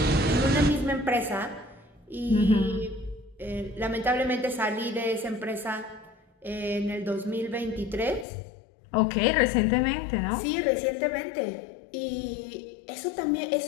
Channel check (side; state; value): right; drops out; at 8.2 s